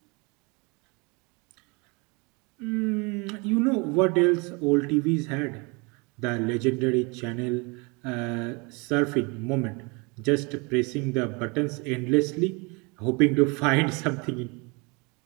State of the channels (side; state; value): left; quieter; 29.5 dB